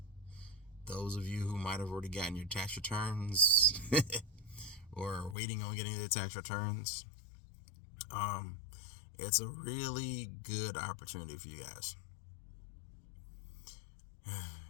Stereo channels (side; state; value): right; drops out; at 5.4 s